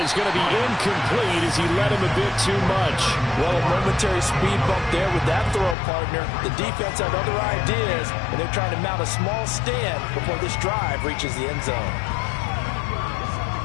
going to be incomplete as he led him a bit too much. Well, a momentary speed bump there with that throw, partner. The defense had other ideas, and they're trying to mount a small stand before this drive reaches the end zone.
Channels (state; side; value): drops out; right; at 5.8 s